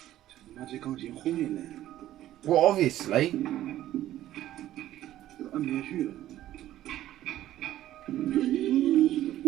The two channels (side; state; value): left; quieter; 13.5 dB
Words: 这他妈这钢琴后面呢？ Well, obviously. 这按不下去了。